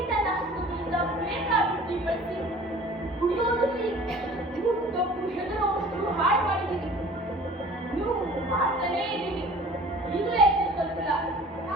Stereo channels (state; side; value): normal; both; correlation 0.46